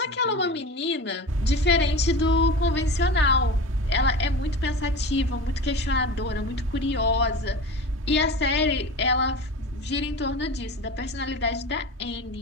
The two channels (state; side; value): normal; both; correlation 0.32